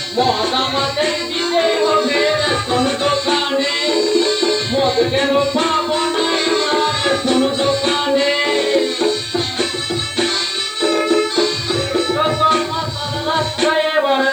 মদ আমাদের দিতে হবে রেশন দোকানে মদ কেন পাবো না রেশন দোকানে যত মাথা রাস্তায় এবার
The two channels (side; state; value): right; noise; hiss, 27 dB below the sound